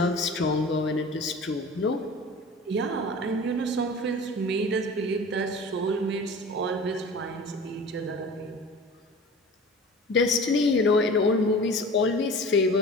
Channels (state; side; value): normal; both; correlation 0.39